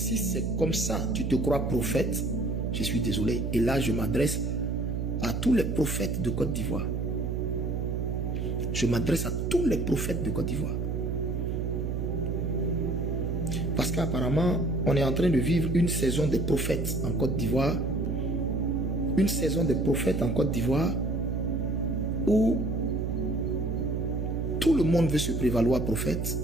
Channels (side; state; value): right; noise; hum, 1 dB below the sound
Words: comme ça, tu te crois prophète, je suis désolé. Et là, je m'adresse à tous les prophètes de Côte d'Ivoire. Je m'adresse à tous les prophètes de Côte d'Ivoire. Parce qu'apparemment, on est en train de vivre une saison des prophètes en Côte d'Ivoire. Une saison des prophètes en Côte d'Ivoire où tout le monde veut se prévaloir prophète.